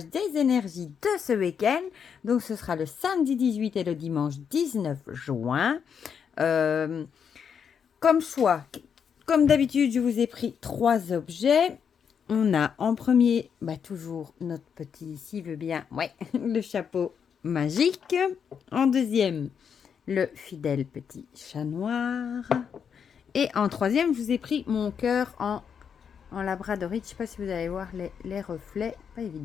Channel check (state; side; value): quieter; right; 7.2 dB